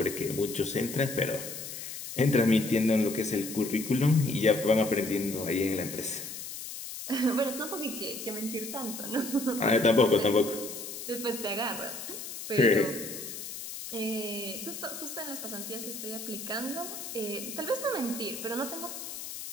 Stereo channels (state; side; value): noise; left; hiss, 9 dB below the sound